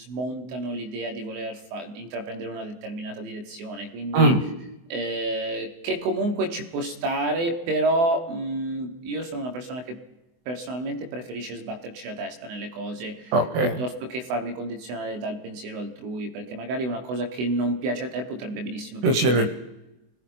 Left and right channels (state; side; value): late; left; 24 ms